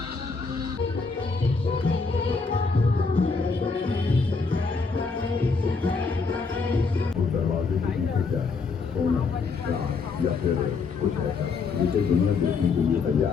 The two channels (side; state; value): right; quieter; 4.6 dB